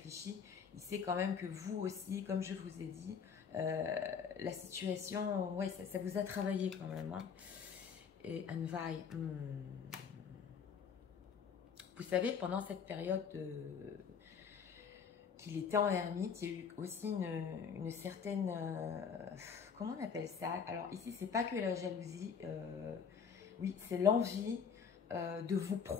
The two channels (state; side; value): quieter; right; 6.6 dB